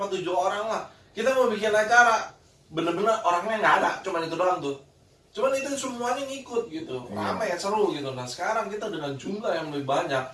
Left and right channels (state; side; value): identical; both; correlation 1.00